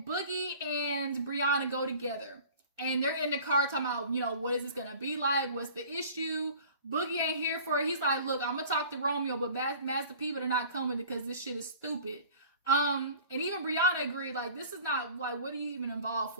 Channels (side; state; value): both; inverted; correlation -0.46